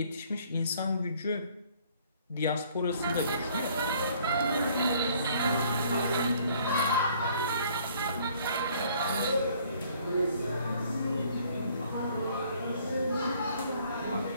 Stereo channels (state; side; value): inverted; both; correlation -0.60